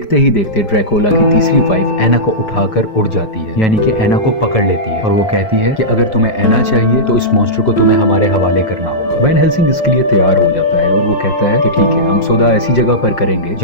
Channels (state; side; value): late; right; 5.0 ms